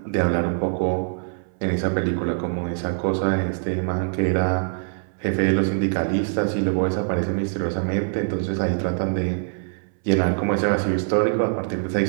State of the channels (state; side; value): silent; left; 63 dB below the other